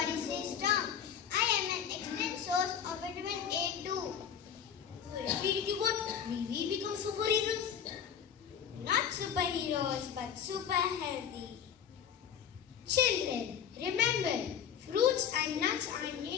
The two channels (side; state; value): right; quieter; 8.3 dB